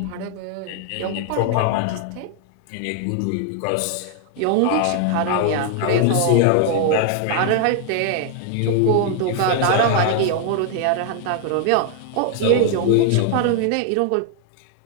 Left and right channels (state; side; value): different; both; correlation 0.00